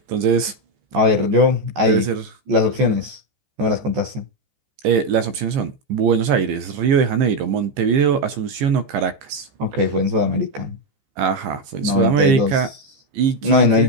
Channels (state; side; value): late; left; 15 ms